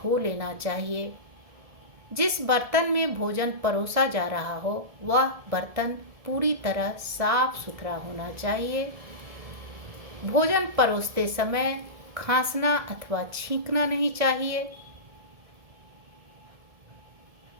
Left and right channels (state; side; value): late; left; 1.7 ms